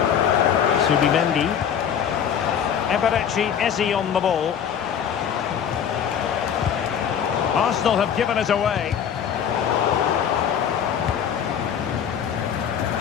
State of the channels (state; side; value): quieter; right; 8.4 dB